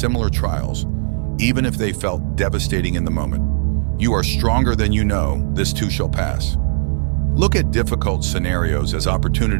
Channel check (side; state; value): left; silent; 60 dB below the other